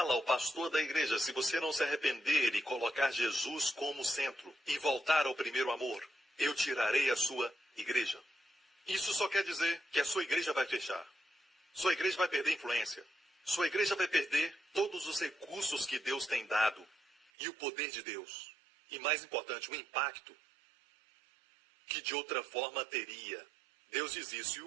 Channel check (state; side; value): drops out; left; at 17.3 s